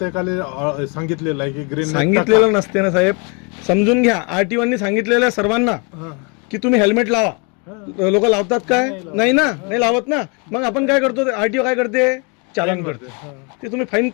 सांगितलेलं आहे की ग्रीन. सांगितलेलं नसते ना साहेब, समजून घ्या. आरटीओनी सांगितलेलं आहे सर्वांना की तुम्ही हेल्मेट लावा. लोक लावतात काय? नाही ना, नाही लावत ना. मग आपण काय करतो, आरटीओ काय करते? चालन करते. ते तुम्ही फाईन,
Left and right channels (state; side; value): quieter; right; 32.3 dB